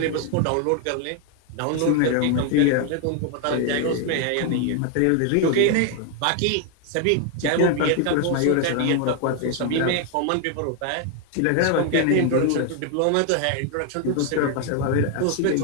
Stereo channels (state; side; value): different; both; correlation 0.00